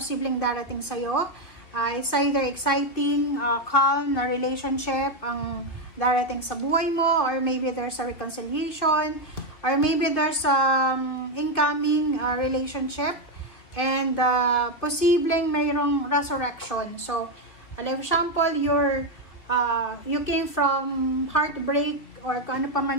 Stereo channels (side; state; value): right; late; 2.7 ms